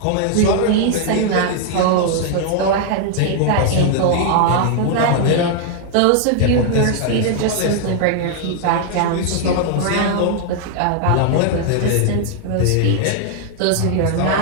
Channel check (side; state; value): both; different; correlation 0.00